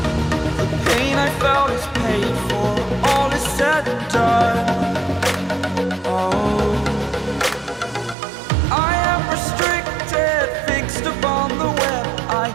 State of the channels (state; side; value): drops out; left; at 8.2 s